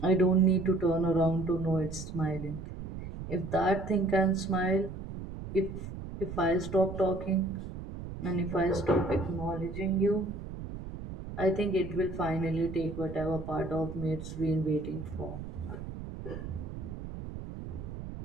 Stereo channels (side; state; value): right; noise; rumble, 9 dB below the sound